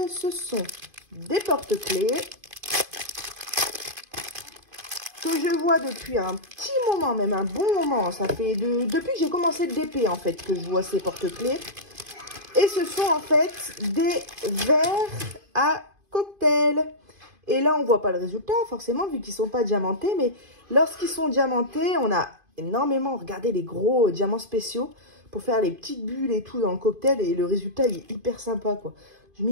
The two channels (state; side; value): late; left; 2.5 ms